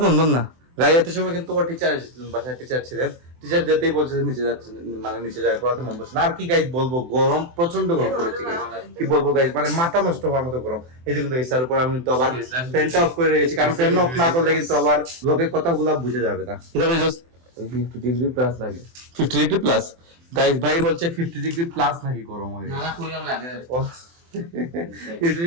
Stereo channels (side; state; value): left; late; 24 ms